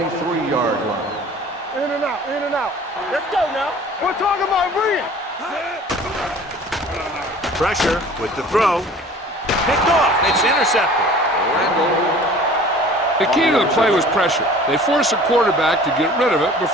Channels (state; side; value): normal; both; correlation 0.46